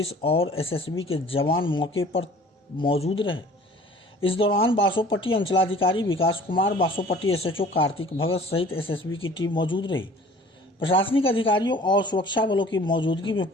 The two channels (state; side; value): normal; both; correlation 0.49